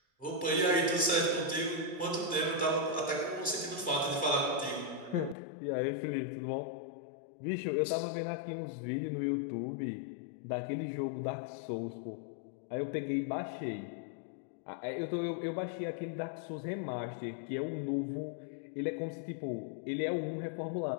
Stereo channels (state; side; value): drops out; right; at 5.4 s